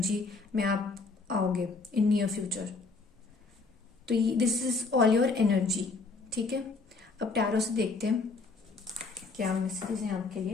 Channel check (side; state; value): right; quieter; 4.0 dB